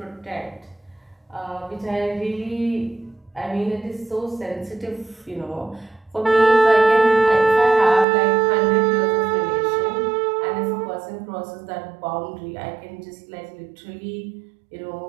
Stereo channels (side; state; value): left; drops out; at 8.1 s